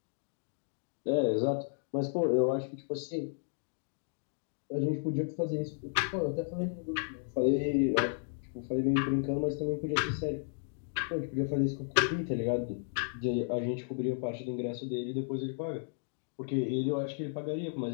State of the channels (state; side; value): silent; right; digital silence